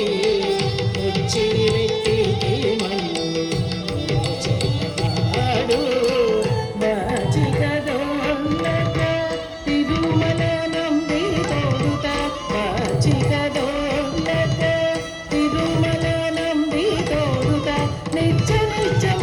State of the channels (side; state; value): both; identical; correlation 1.00